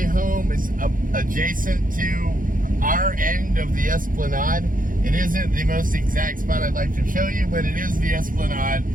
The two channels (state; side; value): late; left; 0.40 ms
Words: home, it's adjacent to our end of the Esplanade. It isn't the most exact spot I'd like to show you, but it is the Esplanade.